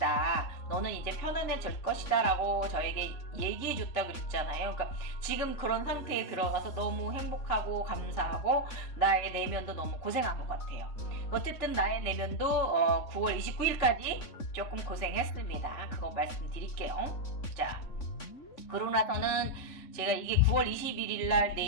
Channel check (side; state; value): right; late; 3.5 ms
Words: 너는 이제 편안해질 것이다 라고 저에게 얘기해 줬다고 그랬잖아요. 그러니까 지금 그런 상태에 들어가서 너무 행복하고 감사하고 나의 내면도 너무 고생한 것 같아요. 어쨌든 나의 내면도 9월 29일까지 조금 고생했습니다. 그거 말씀드릴게요. 자, 그러고 나서는 제가 이게 9월 21일 날